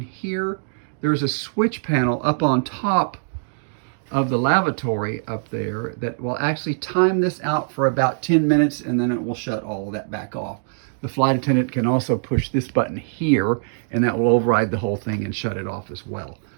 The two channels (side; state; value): left; silent; digital silence